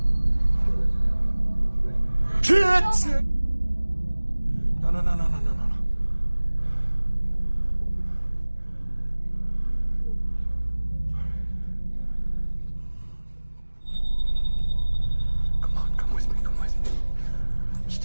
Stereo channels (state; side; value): inverted; both; correlation -1.00